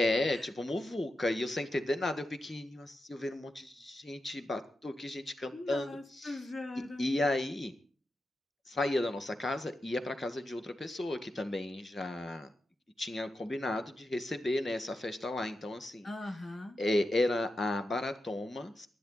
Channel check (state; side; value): normal; both; correlation 0.89